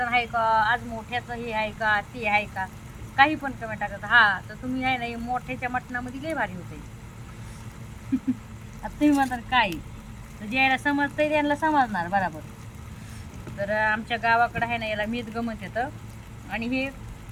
आहे का, आज मोठ्याचं हे आहे का, ते आहे का, काही पण कमेंट टाकतात. हा तर तुम्ही आहे ना मोठ्याच्या मटणामध्ये लय भारी होते. आता तुम्ही म्हणतात काय, तर ज्याला समजतंय त्यांना समजणार बरोबर. तर आमच्या गावाकडं आहे ना याला मेदगं म्हणतात. आणि हे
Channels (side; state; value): both; identical; correlation 1.00